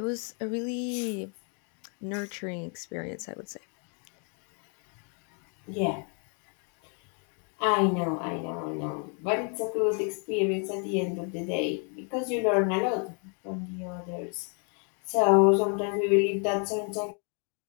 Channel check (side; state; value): right; quieter; 39.8 dB